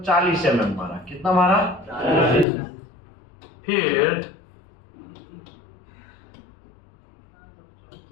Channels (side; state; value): right; drops out; at 2.5 s